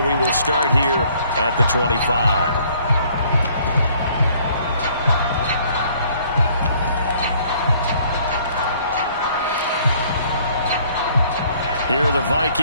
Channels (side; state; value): both; inverted; correlation -0.60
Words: we will start here at the 25. Here are the